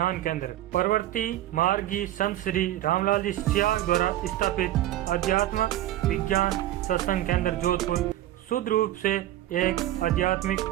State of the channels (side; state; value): left; quieter; 14.0 dB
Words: केंद्र। परवर्ती मार्गी संत श्री रामलाल जी सियाग द्वारा स्थापित आध्यात्मिक विज्ञान सत्संग केंद्र जोधपुर शुद्ध रूप से एक आध्यात्मिक